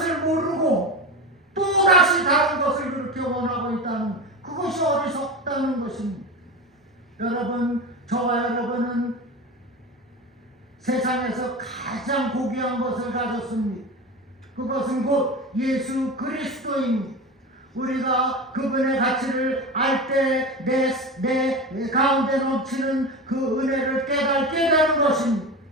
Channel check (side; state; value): both; normal; correlation 0.25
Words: 모르고 또 다시 다른 것을 그렇게 원하고 있다는, 그것이 어리석다는 것입니다. 여러분, 저와 여러분은 세상에서 가장 고귀한 것을 가졌습니다. 그것은 곧 예수 그리스도입니다. 우리가 그분의 가치를 알 때 내 가운데 넘치는 그 은혜를 깨닫게 되는 것입니다.